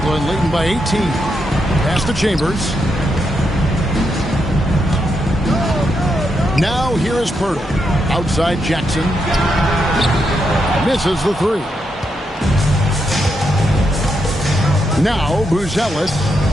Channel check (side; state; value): both; normal; correlation 0.82